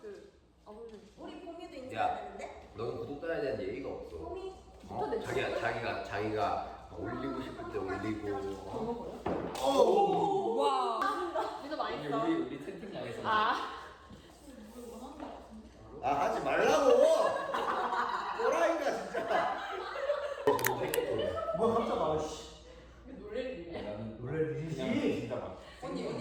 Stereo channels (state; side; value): identical; both; correlation 1.00